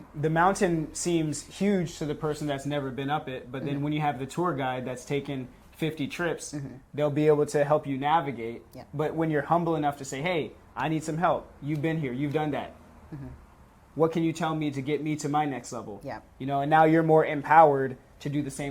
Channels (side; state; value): both; identical; correlation 1.00